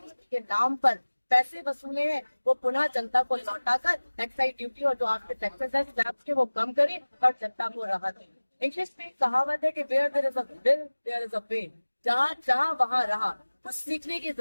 के नाम पर पैसे वसूले हैं वो पुनः जनता को लौटाकर एक्साइज ड्यूटी और जो आपके टैक्सेस है स्लैब्स के वो कम करें और जनता को राहत दें। इंग्लिश में कहावत है कि where there is a will there is a way, जहाँ चाह वहाँ रहा। कुछ सीखने की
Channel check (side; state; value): both; inverted; correlation -1.00